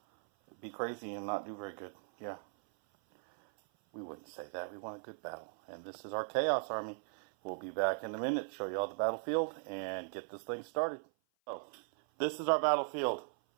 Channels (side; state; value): left; silent; 52 dB below the other